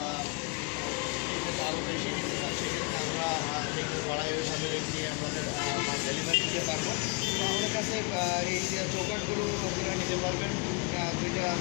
আরও বেশি নিতে চান সেক্ষেত্রে আমরা থিকনেস বাড়াইভাবে নিয়ে আপনাদের ডেলিভারি দিতে পারবো। তো আমাদের কাছে এই চৌকাঠগুলো আপনারা নিতে পারবেন। দুইটা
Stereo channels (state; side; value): quieter; right; 30.2 dB